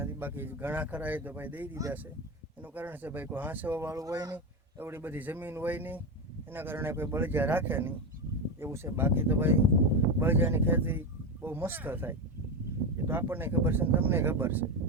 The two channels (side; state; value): both; normal; correlation 0.15